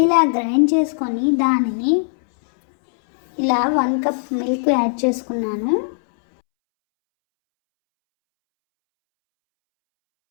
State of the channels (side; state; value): right; silent; 67 dB below the other